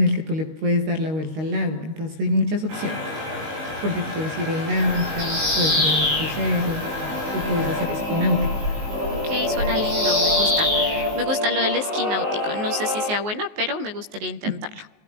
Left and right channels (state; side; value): late; left; 19 ms